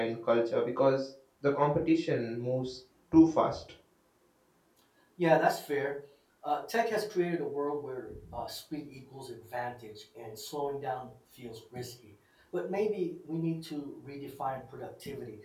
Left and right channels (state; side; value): identical; both; correlation 1.00